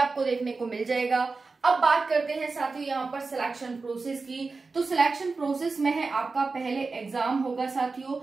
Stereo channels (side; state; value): left; quieter; 4.1 dB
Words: देखने को मिल जाएगा। अब बात करते हैं साथियों यहाँ पर सिलेक्शन प्रोसेस की। तो सिलेक्शन प्रोसेस में है आपका पहले एग्जाम होगा साथियों,